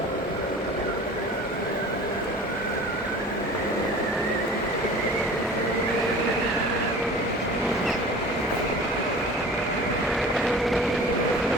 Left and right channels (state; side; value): normal; both; correlation 0.41